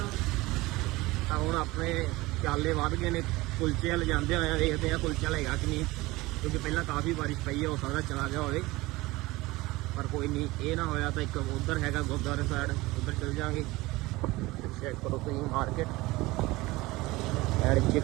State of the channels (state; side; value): quieter; left; 20.5 dB